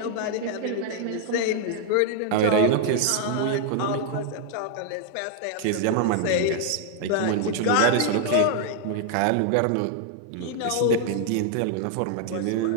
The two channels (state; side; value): different; both; correlation 0.00